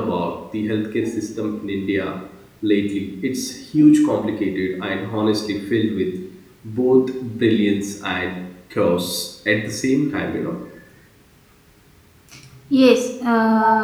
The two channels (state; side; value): identical; both; correlation 1.00